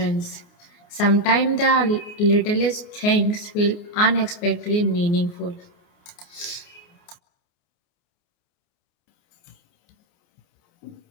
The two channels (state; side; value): late; right; 29 ms